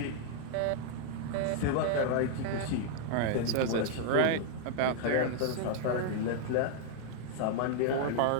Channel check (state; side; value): different; both; correlation -0.01